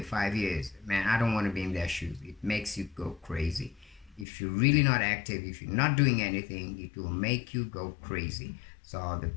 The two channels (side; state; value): right; drops out; at 4.2 s